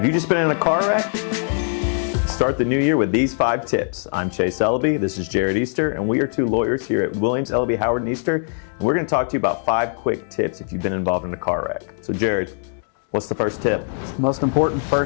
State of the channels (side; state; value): right; silent; 62 dB below the other